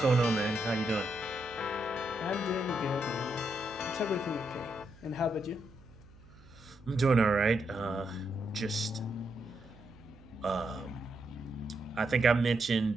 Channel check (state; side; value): noise; right; hum, 23 dB below the sound